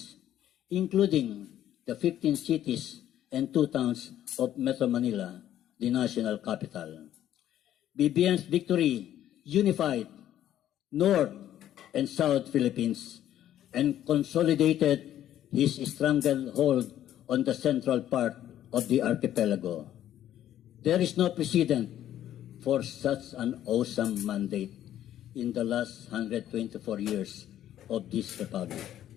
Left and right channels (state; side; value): quieter; right; 11.8 dB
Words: including the 15 cities and 2 towns of Metro Manila, the national capital. BBM's victory unified North and South Philippines and consolidated his stranglehold on the central part of the archipelago. There is no precedent for such an awesome mandate in the last 124 years of this republic.